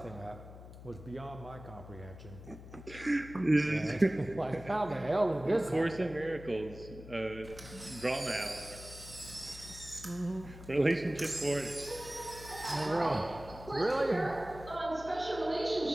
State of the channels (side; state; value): left; noise; hum, 15 dB below the sound